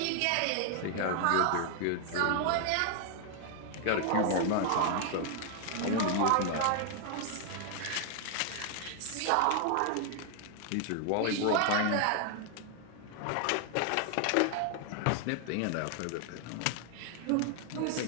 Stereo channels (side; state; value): both; different; correlation 0.00